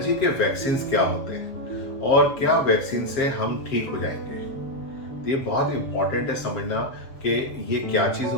के वैक्सीन क्या होते हैं और क्या वैक्सीन से हम ठीक हो जाएंगे। तो ये बहुत इंपॉर्टेंट है समझना कि ये क्या चीज़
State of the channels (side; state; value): right; late; 7.4 ms